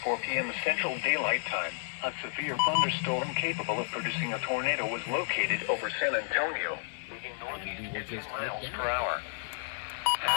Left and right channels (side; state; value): right; silent; digital silence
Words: p.m. Central Daylight Time, a severe thunderstorm capable of producing a tornado was located over San Antonio, moving northeast at 10 miles per hour.